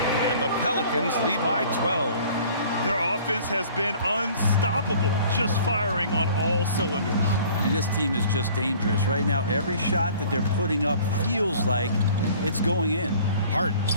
the Pelicans lead by 12. Their offense has been unstoppable, just firing on all cylinders. I mean, this team is just dangerous. Right now, every shot that they're putting up feels like it's going in. Hart,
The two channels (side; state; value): both; inverted; correlation -0.50